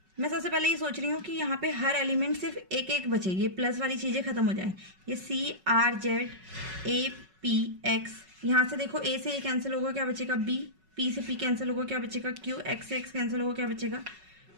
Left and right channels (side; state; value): left; late; 5.4 ms